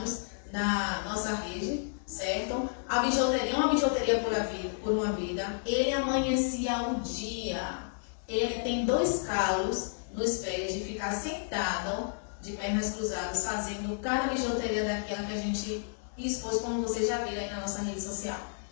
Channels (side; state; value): right; silent; digital silence